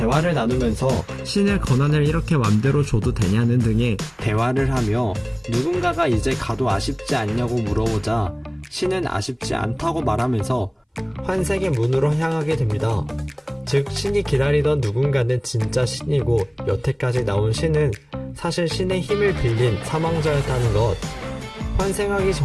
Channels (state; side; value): identical; both; correlation 1.00